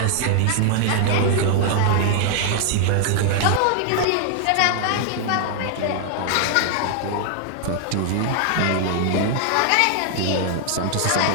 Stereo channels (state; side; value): different; both; correlation -0.01